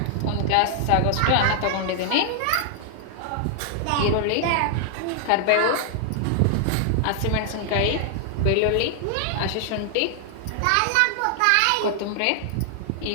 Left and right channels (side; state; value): both; different; correlation 0.00